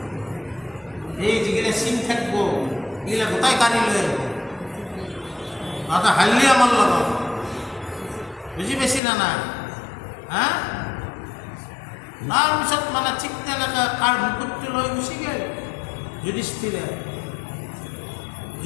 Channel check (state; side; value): drops out; right; at 9.0 s